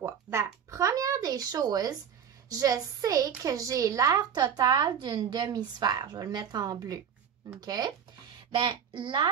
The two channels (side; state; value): left; quieter; 8.1 dB